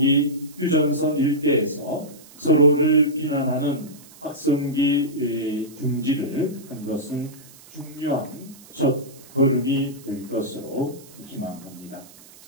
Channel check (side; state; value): right; noise; hiss, 22 dB below the sound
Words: 휴전선 일대에서 서로를 비난하는 확성기 중지를 한 것은 중요한 첫 걸음이 될 것으로 희망합니다.